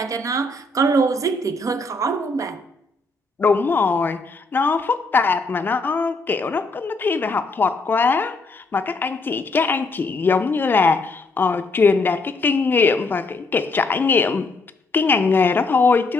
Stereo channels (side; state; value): right; quieter; 3.3 dB